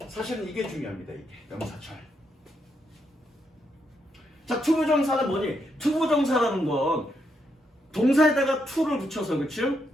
사실은 이게 중요합니다. 이게 명사절. 자, 투부정사는 뭐니? 투부정사라는 건 동사에다가 to를 붙여서, 그치?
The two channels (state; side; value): normal; both; correlation 0.79